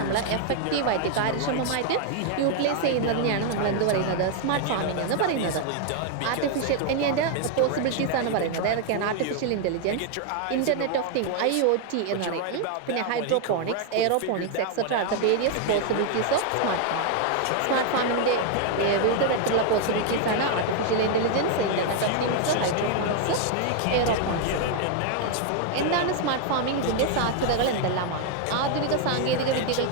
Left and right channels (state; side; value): different; both; correlation 0.00